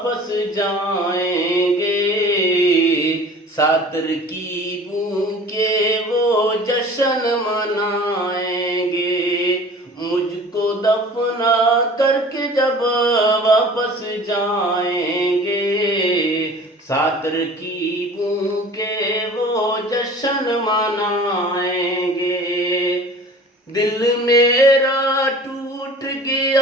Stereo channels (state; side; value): normal; both; correlation 0.44